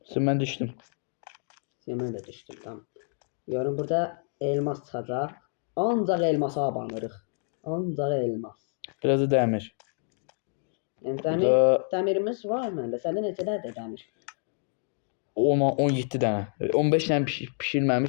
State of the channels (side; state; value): right; silent; 59 dB below the other